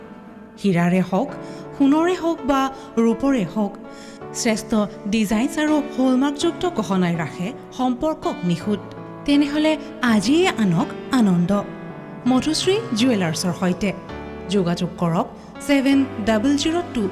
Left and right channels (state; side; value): identical; both; correlation 1.00